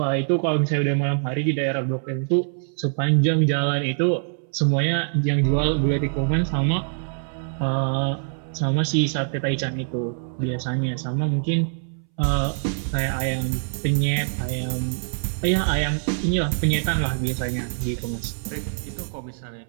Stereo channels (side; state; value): left; silent; 63 dB below the other